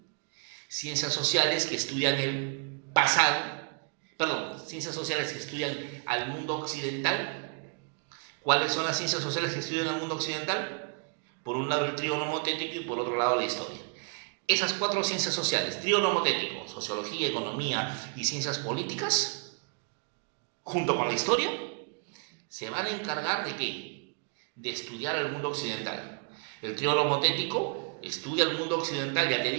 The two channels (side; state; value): left; quieter; 39.0 dB